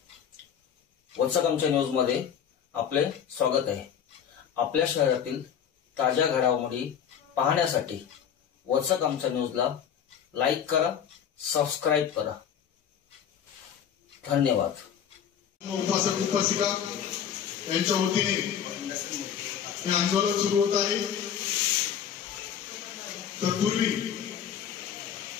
वचक आमच्या न्यूज मध्ये आपले स्वागत आहे. आपल्या शहरातील ताज्या घडामोडी पाहण्यासाठी वचक आमच्या न्यूजला लाईक करा, सबस्क्राईब करा. धन्यवाद. उपासक उपासिका यांच्या वतीने हे आंदोलन सुरू होत आहे. तत्पूर्वी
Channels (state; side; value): quieter; right; 8.6 dB